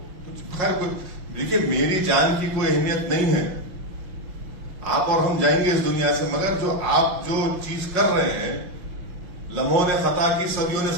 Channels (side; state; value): left; late; 5.5 ms